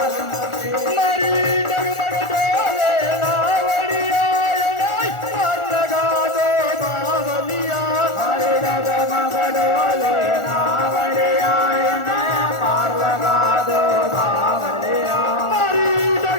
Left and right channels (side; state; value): right; late; 1.4 ms